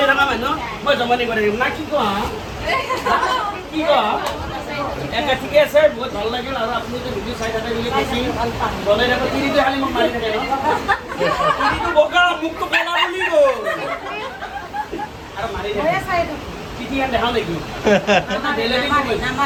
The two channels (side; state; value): both; identical; correlation 1.00